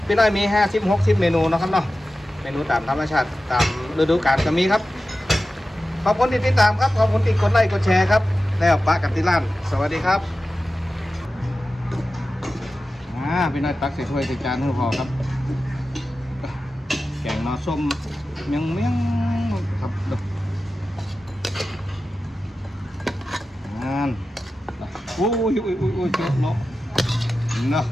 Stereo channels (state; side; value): normal; both; correlation 0.93